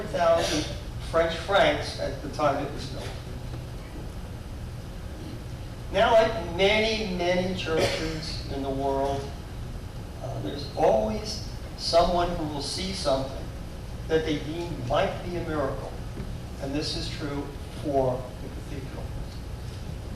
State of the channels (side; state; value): both; identical; correlation 1.00